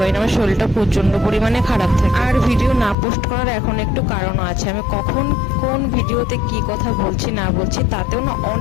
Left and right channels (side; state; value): right; drops out; at 3.0 s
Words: না, আমার শরীরটা প্রচন্ড পরিমাণে খারাপ থাকে। আর ভিডিও না পোস্ট করার এখন একটু কারণও আছে, আমি কখন কোন ভিডিওতে কি কথা বলছি না বলছি তাতেও না